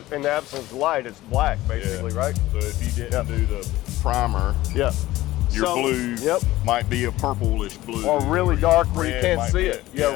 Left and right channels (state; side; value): quieter; right; 16.6 dB